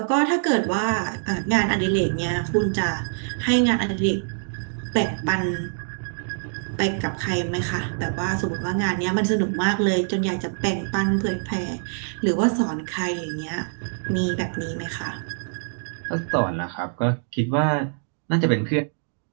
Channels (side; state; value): left; silent; digital silence